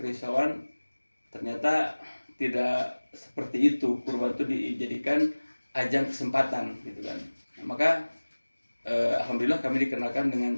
ternyata tidak seperti itu. Kurban itu dijadikan ajang kesempatan gitu kan. Nah, maka alhamdulillah kami dikenakan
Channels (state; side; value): inverted; both; correlation -1.00